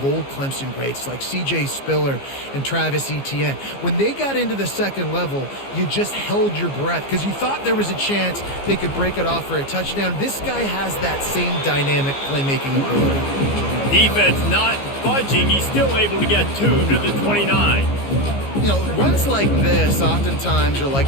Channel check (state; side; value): late; right; 15 ms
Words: old Clemson greats like C.J. Spiller and Travis Etienne. When they got into the second level, you just held your breath because you thought there was a chance they could break it off for a touchdown. This guy has that same dynamic playmaking ability. Defense not budging. He's still able to get 2 to the 29. You know, runs like this oftentimes are